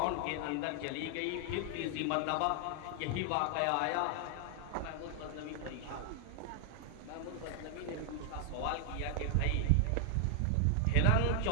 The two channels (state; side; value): different; both; correlation 0.00